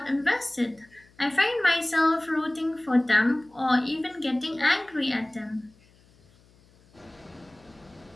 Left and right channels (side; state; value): left; noise; hum, 30 dB below the sound